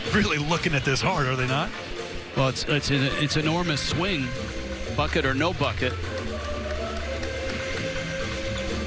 looking at this hard, are they not? Well, it's an enormous swing, bucket or no bucket.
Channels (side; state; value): both; identical; correlation 1.00